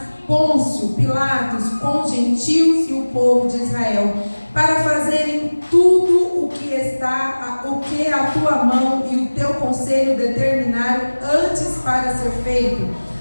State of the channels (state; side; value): inverted; both; correlation -1.00